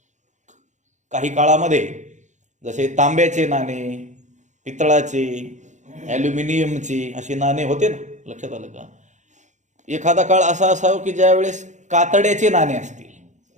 काही काळामध्ये जसे तांब्याचे नाणे, पितळाचे, ॲल्युमिनियमचे असे नाणे होते ना. लक्षात आलं का? एखादा काळ असा असावा की ज्या वेळेस कातड्याचे नाणे असतील.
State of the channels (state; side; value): late; left; 0.35 ms